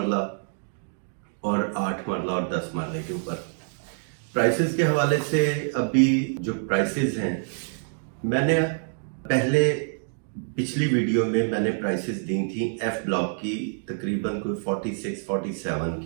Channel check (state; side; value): silent; left; digital silence